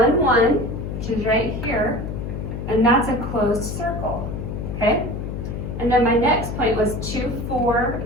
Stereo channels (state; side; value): noise; left; hum, 5 dB below the sound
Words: 1, which is right here, and that's a closed circle. Okay, And then my next point was 2, 4,